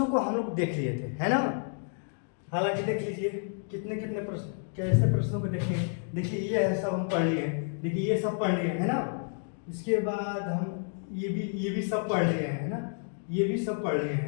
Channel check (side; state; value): right; silent; 58 dB below the other